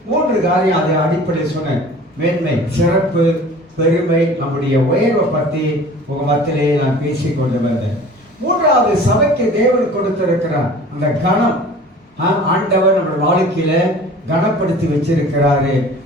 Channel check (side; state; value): both; normal; correlation 0.44